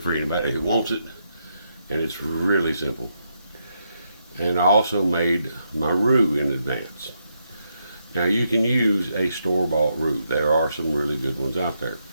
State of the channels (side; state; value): both; inverted; correlation -0.80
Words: anybody who wants it. And it's really simple. And I also made my roux in advance. Now you can use a store-bought roux. There are some really good ones out there.